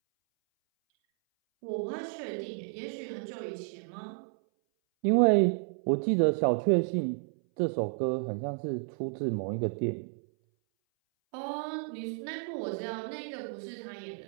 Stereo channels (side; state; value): left; silent; 57 dB below the other